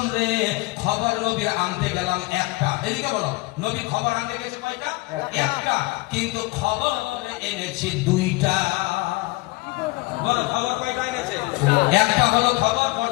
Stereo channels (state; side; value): quieter; right; 23.4 dB